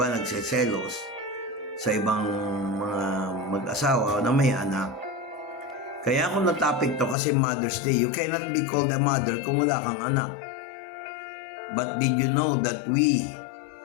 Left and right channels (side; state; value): right; drops out; at 7.2 s